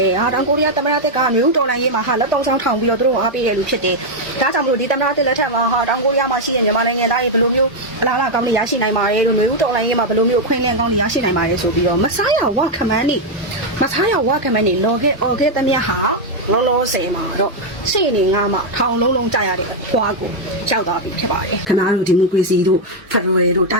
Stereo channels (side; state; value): both; normal; correlation 0.00